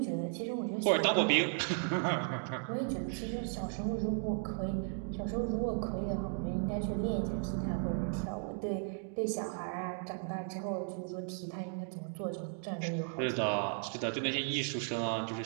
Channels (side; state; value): left; silent; 54 dB below the other